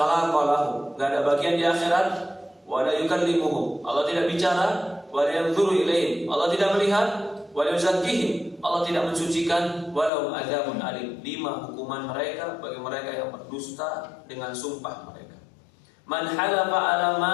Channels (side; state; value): right; drops out; at 10.1 s